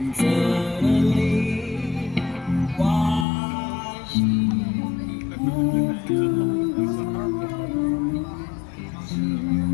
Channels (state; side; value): drops out; right; at 3.2 s